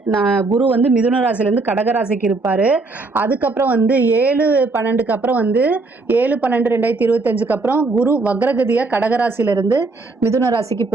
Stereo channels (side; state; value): left; quieter; 3.6 dB